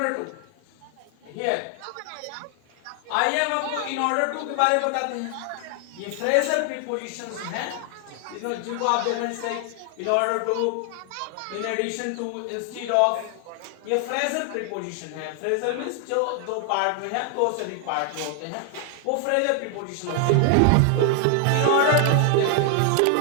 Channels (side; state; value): both; different; correlation 0.00